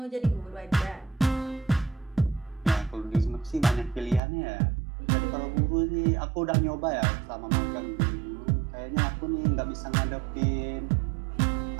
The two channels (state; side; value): drops out; left; at 4.2 s